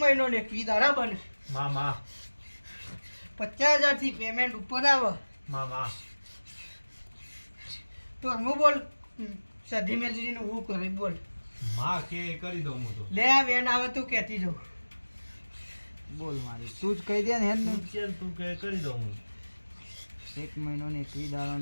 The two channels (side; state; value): both; inverted; correlation -1.00